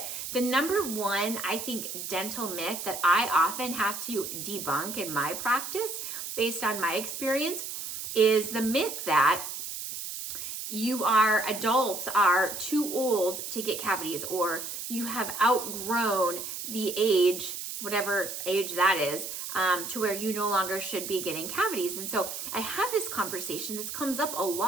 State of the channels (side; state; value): right; noise; hiss, 7 dB below the sound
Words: the number one, I think, dental myth that I often have to debunk in my practice, based on my experience, is the myth that adults are too old to get cavities, or you have outgrown the age, whatever age that is, to where you no longer should be getting cavities. And so I have this conversation. This comes up a